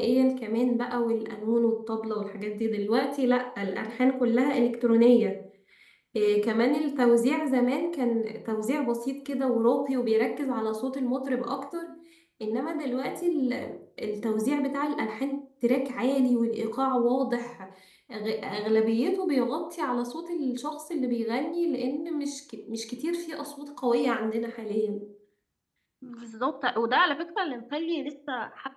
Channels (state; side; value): identical; both; correlation 1.00